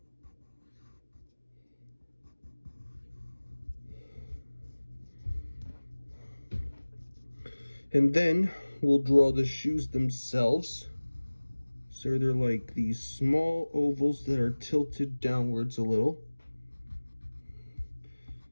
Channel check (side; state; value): both; inverted; correlation -1.00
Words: And then we'll draw the shoes themselves. So they're like these small ovals that are tilted downwards a little.